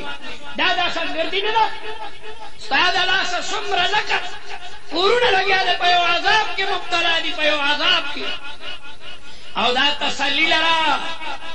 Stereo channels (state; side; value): identical; both; correlation 1.00